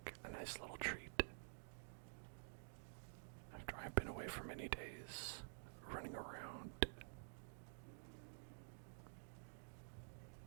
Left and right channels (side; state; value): left; silent; digital silence